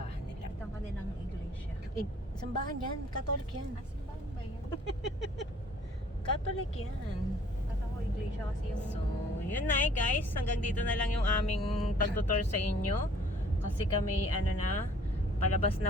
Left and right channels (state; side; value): normal; both; correlation 0.56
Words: nila. Ito ang kanilang iglesia. Simbahan yan, Catholic yan. Simbahan ba yan? Catholic yan. Kata ko iglesia kasi yung... So, yun na eh guys. Hanggang dito na lang yung aming pagtutor sa inyo. Kasi kami, ano na, palabas